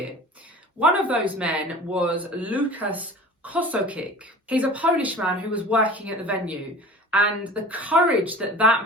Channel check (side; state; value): both; normal; correlation 0.40